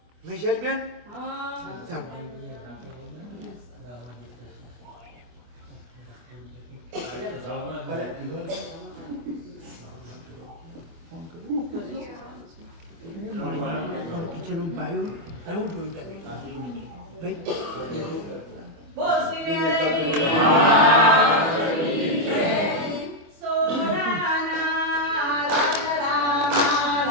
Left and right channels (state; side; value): late; left; 24 ms